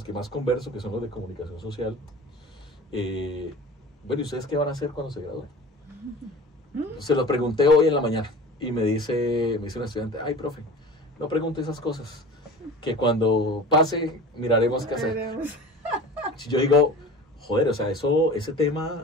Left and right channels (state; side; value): normal; both; correlation 0.37